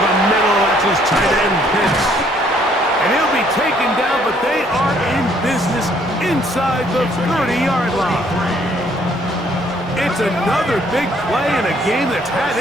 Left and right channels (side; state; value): both; normal; correlation 0.64